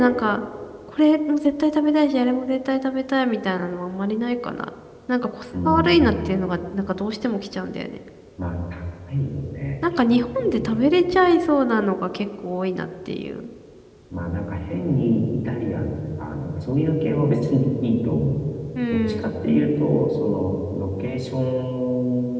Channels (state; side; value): identical; both; correlation 1.00